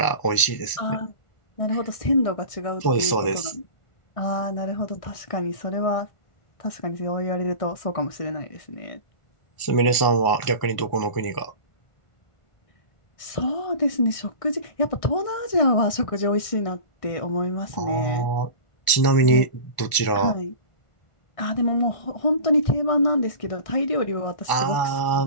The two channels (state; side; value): late; right; 1.4 ms